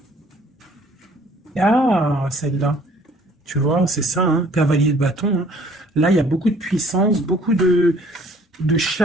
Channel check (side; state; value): both; normal; correlation 0.57